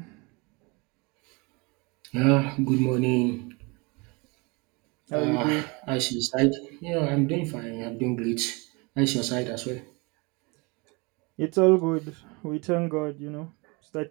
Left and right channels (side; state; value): left; quieter; 28.2 dB